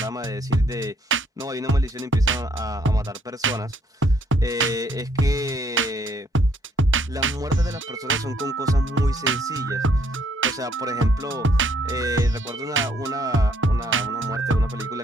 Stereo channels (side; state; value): both; normal; correlation 0.68